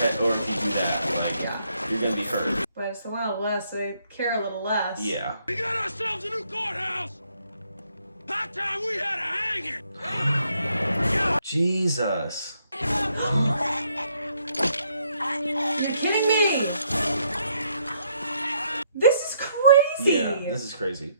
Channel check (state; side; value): inverted; both; correlation -0.72